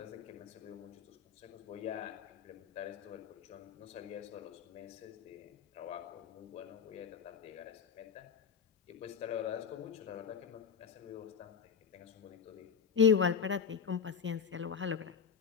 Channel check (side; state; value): right; quieter; 6.7 dB